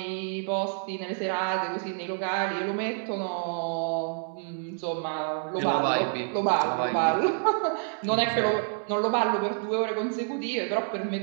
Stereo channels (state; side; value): silent; left; digital silence